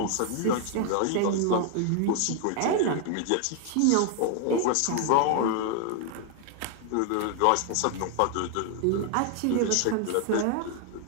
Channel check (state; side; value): different; both; correlation 0.00